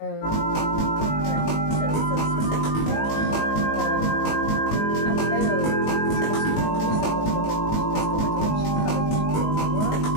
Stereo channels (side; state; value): right; late; 19 ms